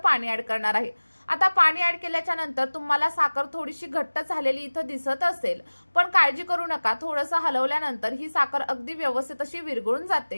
ॲड करणार आहे. आता पाणी ॲड केल्याच्या नंतर तुम्हाला साखर थोडीशी घट्ट झालेली इथं दिसत असेल, पण काळजी करू नका, थोडंसं हलवल्यानंतर ही साखर अगदी व्यवस्थित अशी विरघळून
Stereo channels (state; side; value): inverted; both; correlation -1.00